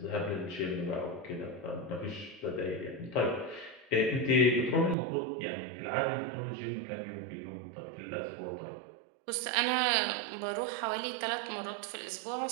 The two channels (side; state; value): left; drops out; at 5.0 s